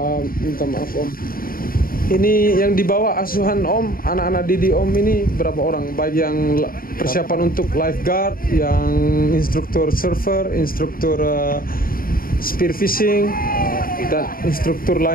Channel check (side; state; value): right; late; 0.42 ms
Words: minta maaf Om. Ini yang dibawa asuhan Om, anak-anak Didi Om ini berapa orang? Baik yang persiapan untuk lifeguard, yang instruktur surfer, instruktur spear fishing, dan instruktur